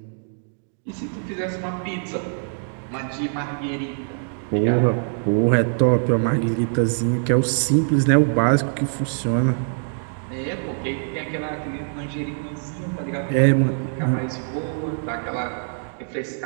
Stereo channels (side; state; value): left; silent; digital silence